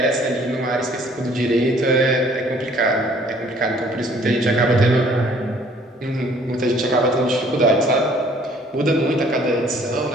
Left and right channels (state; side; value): normal; both; correlation 0.57